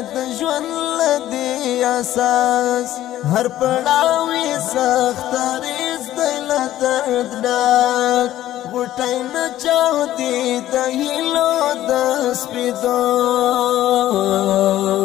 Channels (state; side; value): quieter; right; 13.6 dB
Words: د ژوند له دې اساس هر پړاو یې سختریز دی له درد ډک غوټۍ نه چاودي د هیلو د سپېدو